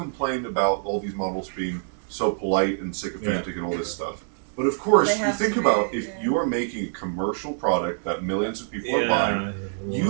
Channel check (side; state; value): left; silent; digital silence